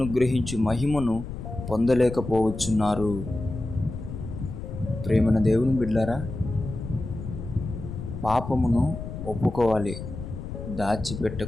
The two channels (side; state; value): left; noise; rumble, 8 dB below the sound